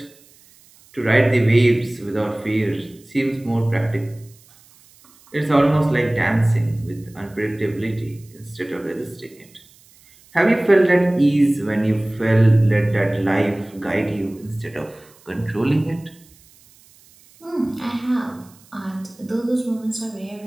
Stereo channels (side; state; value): right; noise; hiss, 28 dB below the sound